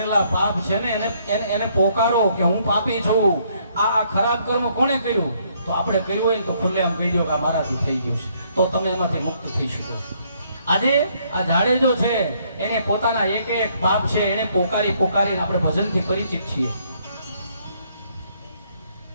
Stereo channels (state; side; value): inverted; both; correlation -0.69